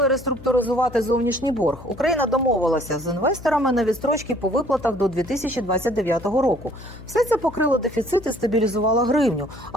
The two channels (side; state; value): left; noise; hum, 17 dB below the sound